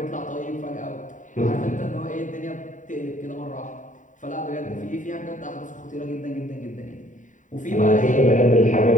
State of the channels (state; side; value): late; right; 0.37 ms